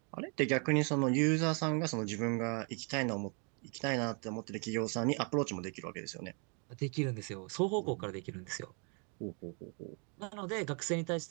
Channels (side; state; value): left; quieter; 37.1 dB